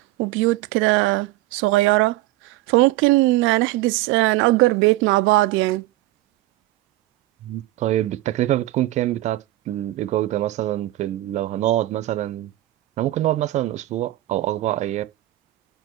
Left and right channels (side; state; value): left; quieter; 17.2 dB